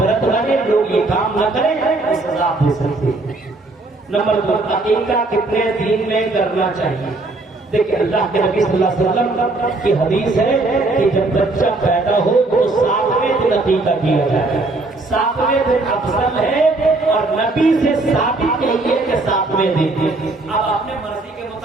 بنے, لوگ یہ کام نہ کریں, وہ سزا دے سکتے ہیں. نمبر 2, عقیقہ کتنے دن میں کرنا چاہیے؟ دیکھیں اللہ کے نبی صلی اللہ علیہ وسلم کی حدیث ہے کہ جب بچہ پیدا ہو تو 7ویں دن عقیقہ کیا جائے. 7ویں دن افضل ہے اور نبی سے ثابت نہیں ہے کہ 7ویں دن. اب اپنے مرضی کے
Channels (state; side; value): quieter; left; 3.1 dB